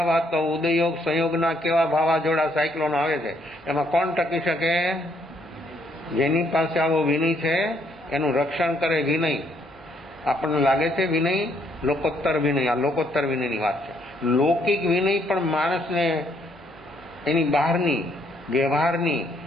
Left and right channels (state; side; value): normal; both; correlation 0.70